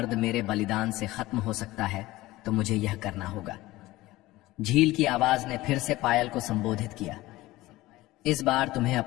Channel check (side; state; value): right; quieter; 18.3 dB